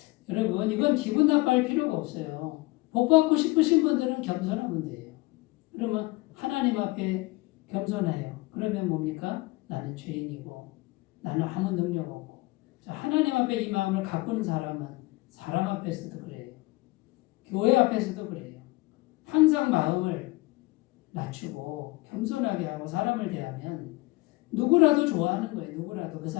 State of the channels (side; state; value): right; quieter; 21.7 dB